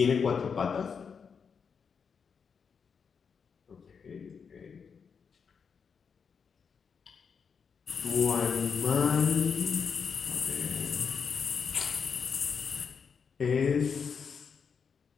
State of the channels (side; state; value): right; quieter; 6.2 dB